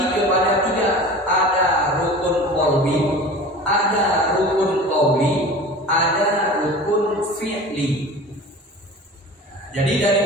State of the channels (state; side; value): normal; both; correlation 0.38